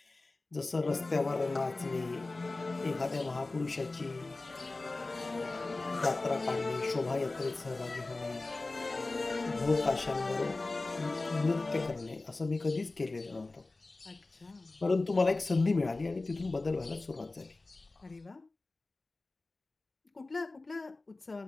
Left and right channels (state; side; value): quieter; right; 3.2 dB